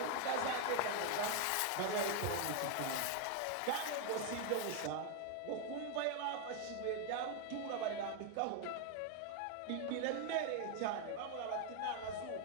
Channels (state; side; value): different; both; correlation 0.01